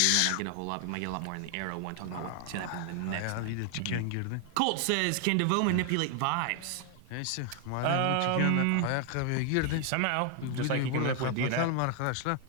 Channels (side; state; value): both; different; correlation 0.00